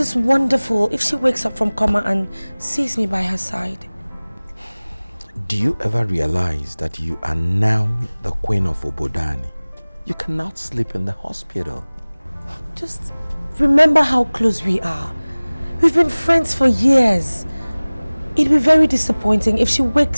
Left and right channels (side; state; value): both; inverted; correlation -1.00